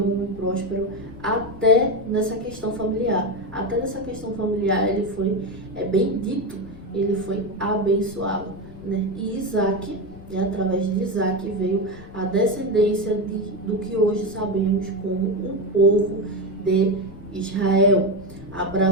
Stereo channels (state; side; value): noise; left; rumble, 18 dB below the sound